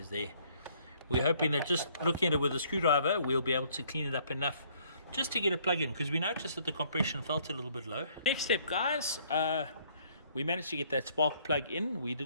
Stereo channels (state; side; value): inverted; both; correlation -0.63